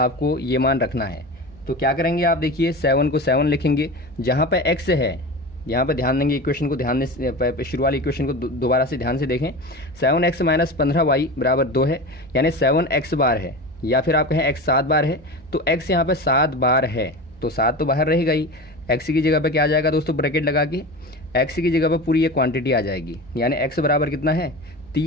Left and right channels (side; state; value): left; noise; rumble, 29 dB below the sound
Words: ये मान रखना है। तो क्या करेंगे आप, देखिए 7 को 7 लिखेंगे, जहाँ पे x है यहाँ पे ध्यान देंगे, इक्वेशन को ध्यान दें, शुरू वाली इक्वेशन को दोबारा से ध्यान से देखें। 7x माइनस 15y बराबर 2 है, यानी 7x बार है, या फिर आप कहें x 7 बार है, तो x यहाँ पे 7 बार है, तो 7 तो बाहर रहेगा ही। x की जगह पे क्या आ जाएगा दोस्तों, ब्रैकेट लगा के x की जगह पे पूरी ये क्वांटिटी आ जाएगी, यानी x बराबर कितना है